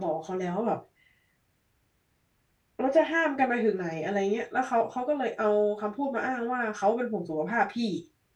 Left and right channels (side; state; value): both; identical; correlation 1.00